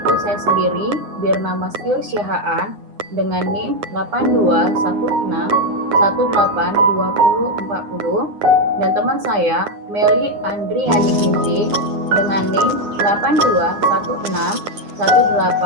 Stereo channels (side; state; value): left; late; 9.8 ms